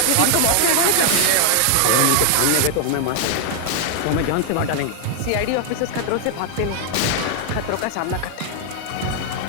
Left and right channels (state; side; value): different; both; correlation 0.00